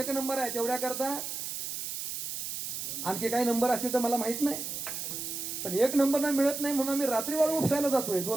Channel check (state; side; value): noise; right; hiss, 5 dB below the sound